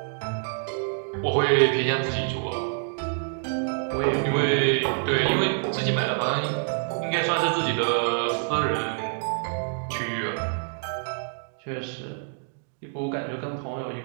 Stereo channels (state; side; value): silent; left; 60 dB below the other